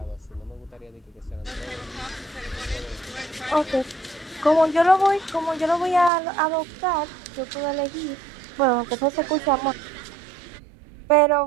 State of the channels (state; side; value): drops out; left; at 6.1 s